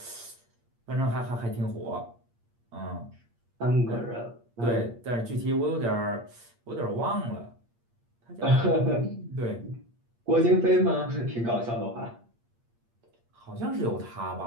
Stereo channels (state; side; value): late; left; 8.6 ms